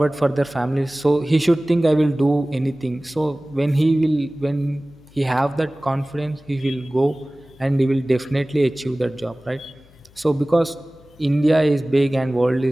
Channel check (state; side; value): noise; left; hum, 28 dB below the sound